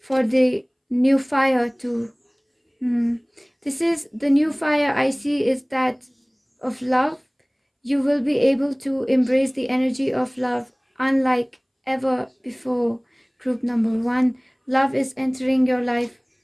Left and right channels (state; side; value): identical; both; correlation 1.00